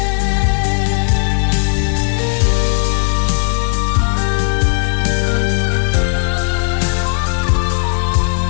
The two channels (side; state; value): right; silent; 57 dB below the other